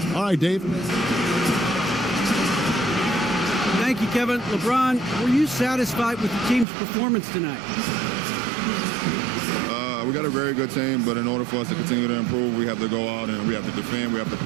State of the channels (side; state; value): left; drops out; at 6.7 s